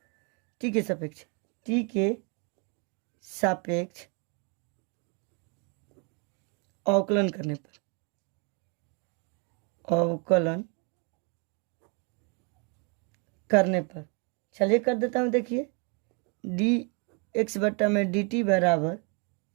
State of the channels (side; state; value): left; quieter; 34.9 dB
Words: टी के सापेक्ष अवकलन करने पर, चलिए कर देता हूँ। देखिए डी एक्स बट्टा में डी टी बराबर